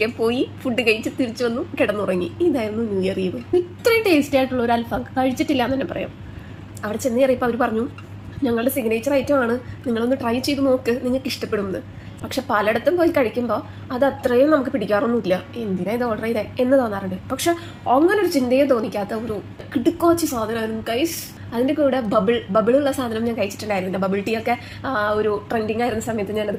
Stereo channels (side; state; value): both; identical; correlation 1.00